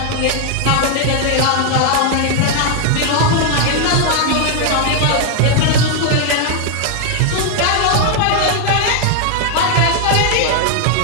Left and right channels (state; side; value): different; both; correlation 0.00